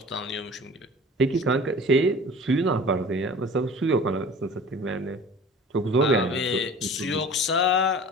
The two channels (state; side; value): normal; both; correlation 0.42